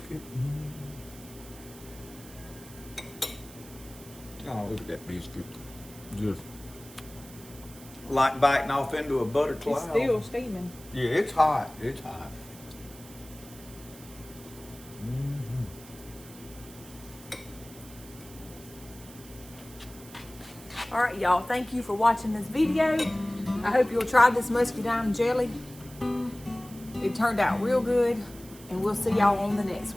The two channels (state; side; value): noise; right; hiss, 19 dB below the sound